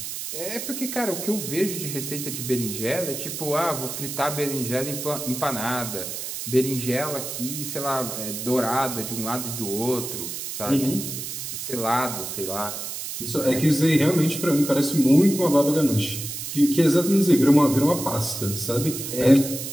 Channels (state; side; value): noise; right; hiss, 6 dB below the sound